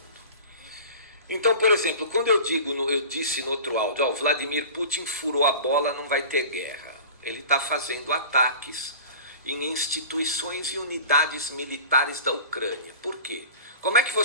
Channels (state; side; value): inverted; both; correlation -0.38